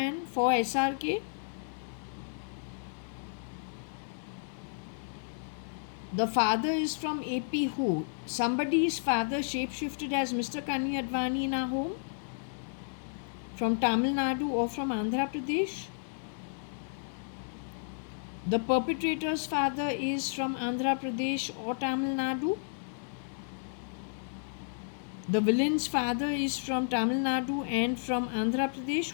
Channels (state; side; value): silent; right; digital silence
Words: for SRK. The father is from AP who? Somebody's father shapeshifted as Mr. JAYA.ADVANI in our home? From Tamil Nadu or from Andhra Pradesh? The perpetrator's father is from Andhra Pradesh or Tamil Nadu? The villain's father is from Tamil Nadu and from Andhra